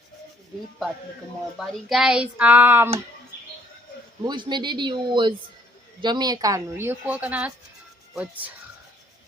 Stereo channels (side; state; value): both; normal; correlation 0.63